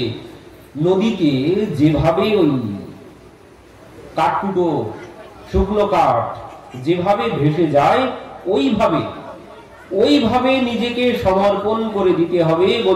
নদীতে যেভাবে ওই কাঠকুটো শুকনো কাঠ যেভাবে ভেসে যায় ওইভাবে নিজেকে সমর্পণ করে দিতে হবে।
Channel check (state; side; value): identical; both; correlation 1.00